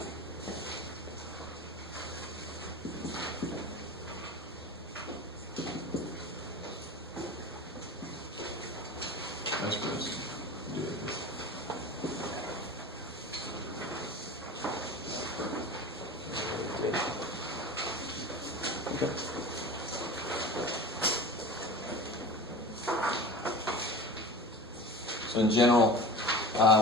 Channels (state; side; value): normal; both; correlation 0.34